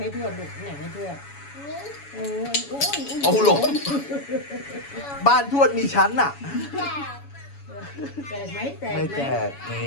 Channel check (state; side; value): late; right; 7.1 ms